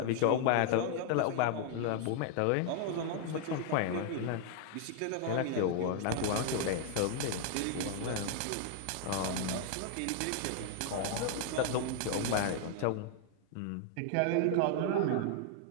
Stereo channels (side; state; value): both; different; correlation 0.00